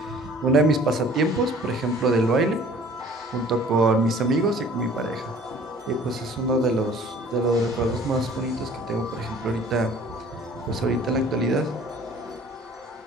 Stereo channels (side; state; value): both; normal; correlation 0.51